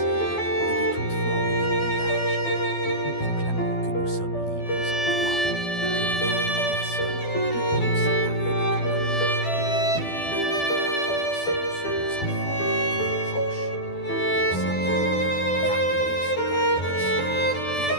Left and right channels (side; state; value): right; late; 12 ms